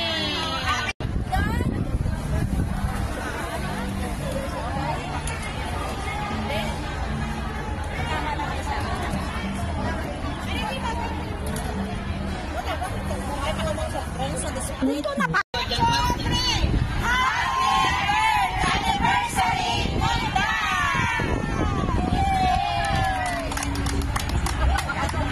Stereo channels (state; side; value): identical; both; correlation 1.00